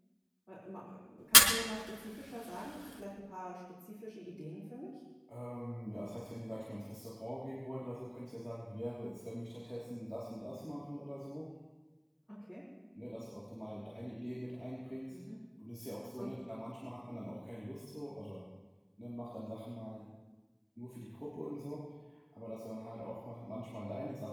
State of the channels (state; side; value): identical; both; correlation 1.00